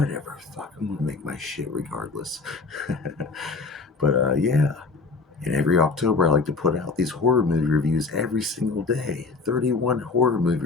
Fuck, I'm gonna make my shit regardless. But yeah. And every October, I like to put out these horror movie reviews every single day. 31 horror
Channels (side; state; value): right; quieter; 4.1 dB